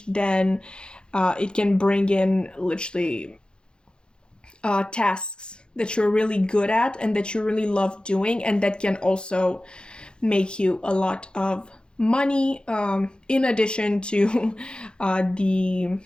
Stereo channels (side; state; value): right; late; 0.050 ms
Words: then it can bring in literally tasks that you're really good at and that you really love doing, and that can also make you a lot of money, in addition to the